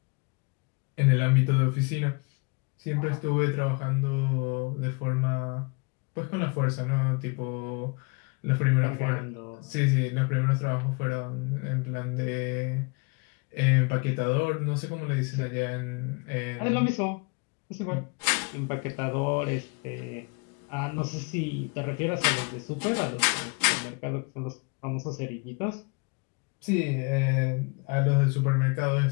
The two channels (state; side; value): quieter; right; 31.1 dB